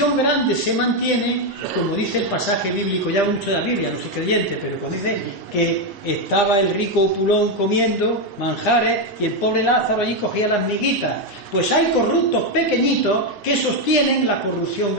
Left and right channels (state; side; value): late; right; 4.1 ms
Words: grande se mantiene, como dice el pasaje bíblico, ya mucho de la Biblia, no soy creyente, pero cuando dice que estaba el rico opulón comiendo manjares y el pobre Lázaro allí cogía las miguitas. Pues hay corruptos pequeñitos que sostienen la corrupción